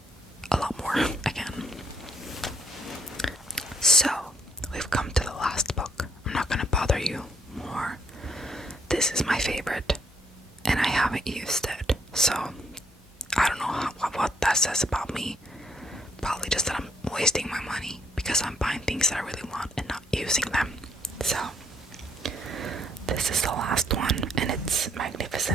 a lot more again. So we've come to the last book. I'm not going to bother you more. This is my favorite, and I haven't used it. So I don't know what that says about me. Probably just that I'm wasting my money because I'm buying things that I really want and not using them. So this is the last one, and it's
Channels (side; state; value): both; normal; correlation 0.70